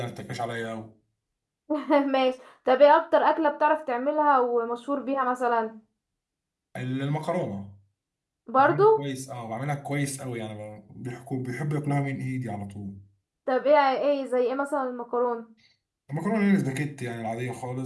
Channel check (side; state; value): both; identical; correlation 1.00